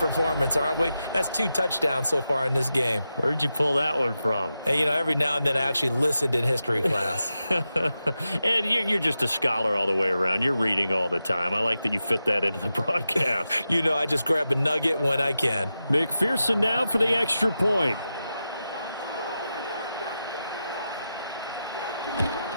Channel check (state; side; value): inverted; both; correlation -0.90